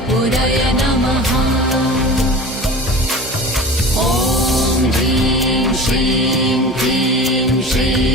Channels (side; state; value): both; normal; correlation 0.36